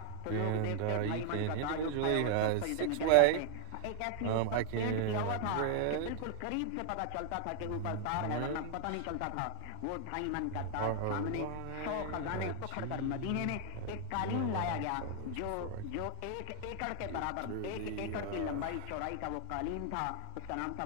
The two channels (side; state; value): both; different; correlation 0.00